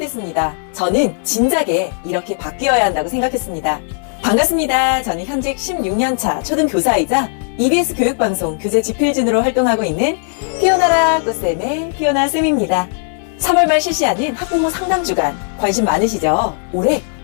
저는 진작에 이렇게 바뀌어야 한다고 생각했습니다. 반갑습니다. 저는 현직 16년차 초등교사이자 EBS 교육방송 교재지필진으로 활동하고 있는 피어나라 꽃쌤의 피어나쌤입니다. 3월 말 실시하는 학부모 상담주간 관심 많으시죠? 올해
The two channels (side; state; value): right; silent; 65 dB below the other